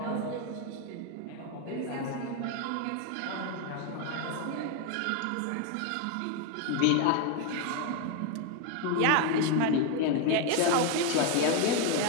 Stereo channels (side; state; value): both; different; correlation 0.01